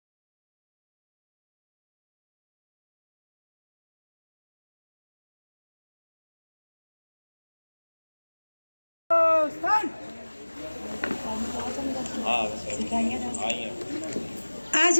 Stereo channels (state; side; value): inverted; both; correlation -1.00